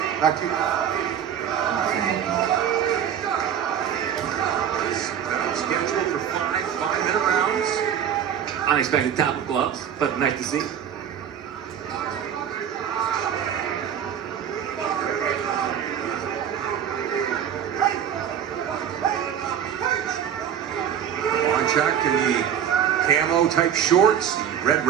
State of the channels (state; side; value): quieter; left; 9.0 dB